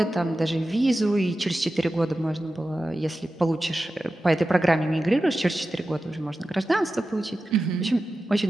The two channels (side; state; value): both; normal; correlation 0.93